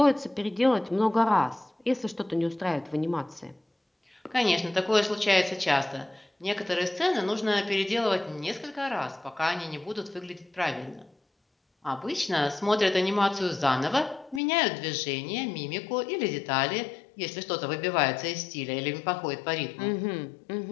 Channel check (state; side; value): drops out; right; at 14.4 s